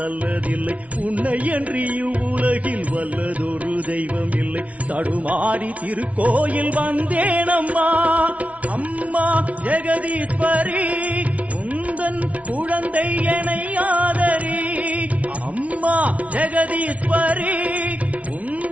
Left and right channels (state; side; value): late; left; 0.066 ms